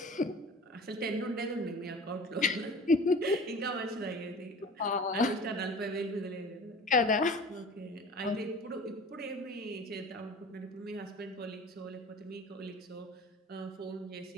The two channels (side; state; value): both; normal; correlation 0.41